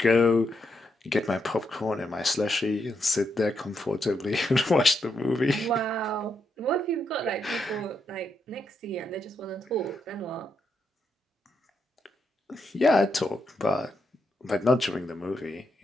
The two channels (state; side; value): normal; both; correlation 0.81